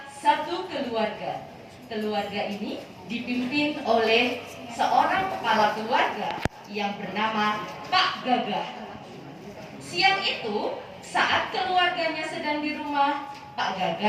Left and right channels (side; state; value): both; identical; correlation 1.00